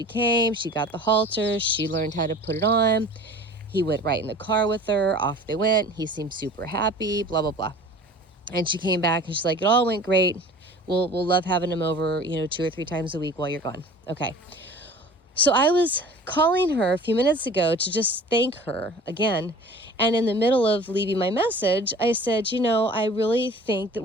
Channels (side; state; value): both; normal; correlation 0.44